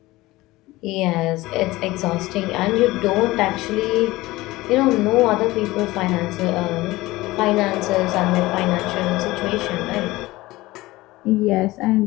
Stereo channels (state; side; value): quieter; right; 19.2 dB